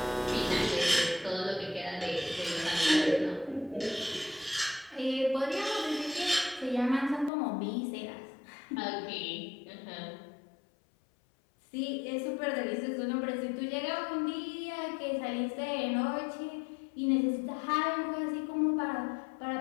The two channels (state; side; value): drops out; right; at 7.3 s